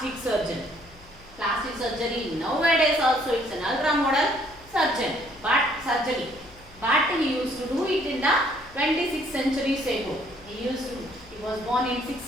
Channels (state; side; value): noise; left; hum, 23 dB below the sound